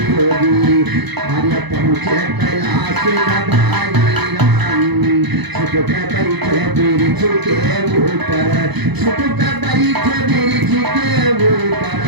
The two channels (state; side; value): late; left; 0.99 ms